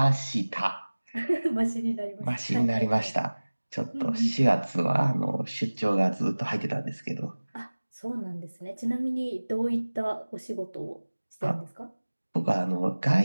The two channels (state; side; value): inverted; both; correlation -1.00